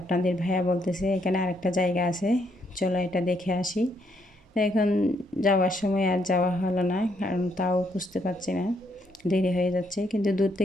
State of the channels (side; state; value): both; normal; correlation 0.74